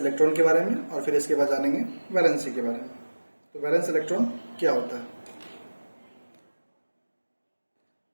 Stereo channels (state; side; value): inverted; both; correlation -1.00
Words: के बारे में और फिर इसके बाद जानेंगे वैलेंसी के बारे में। तो वैलेंस इलेक्ट्रॉन क्या होता है?